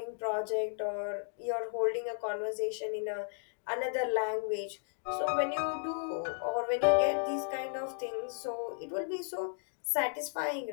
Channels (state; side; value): silent; right; digital silence